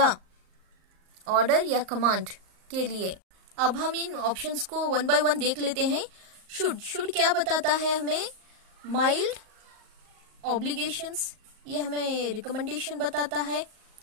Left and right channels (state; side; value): late; left; 38 ms